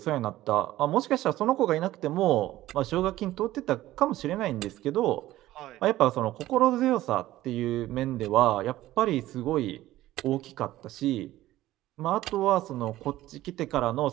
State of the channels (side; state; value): left; quieter; 15.4 dB